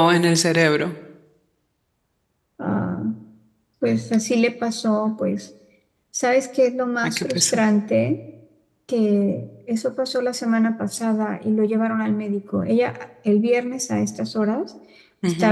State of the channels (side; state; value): both; identical; correlation 1.00